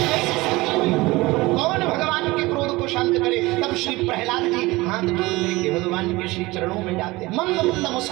कौन भगवान के क्रोध को शांत करे? तब श्री प्रहलाद जी हाथ जोड़ करके भगवान के श्री चरणों में जाते, मंद मंद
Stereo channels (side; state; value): left; quieter; 21.2 dB